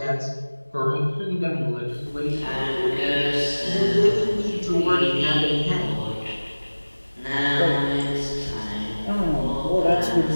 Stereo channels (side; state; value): both; inverted; correlation -1.00